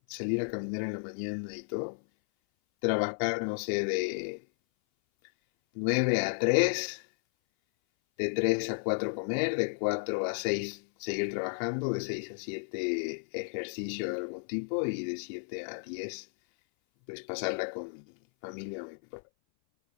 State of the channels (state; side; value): silent; right; 56 dB below the other